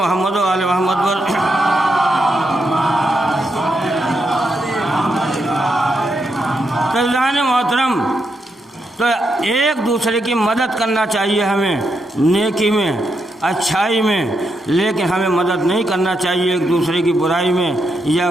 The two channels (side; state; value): both; normal; correlation 0.82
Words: و آل محمد پر۔ تو ایک دوسرے کی مدد کرنا چاہیے ہمیں نیکی میں، اچھائی میں، لیکن ہمیں مدد نہیں کرنا چاہیے ایک دوسرے کی برائی میں یا